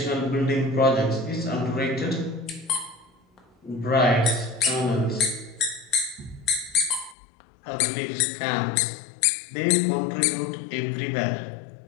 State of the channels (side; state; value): right; drops out; at 7.2 s